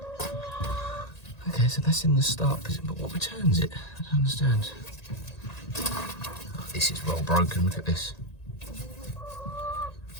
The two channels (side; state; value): right; late; 1.9 ms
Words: Okay, so that's in the start position, but what returns it? I don't understand. Oh, this is well broken, look at this.